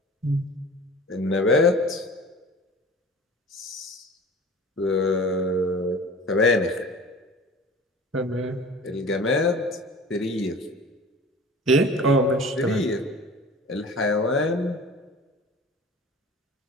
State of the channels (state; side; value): normal; both; correlation 0.41